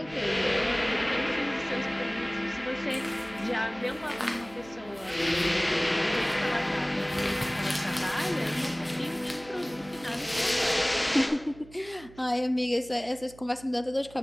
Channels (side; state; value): right; noise; hum, 21 dB below the sound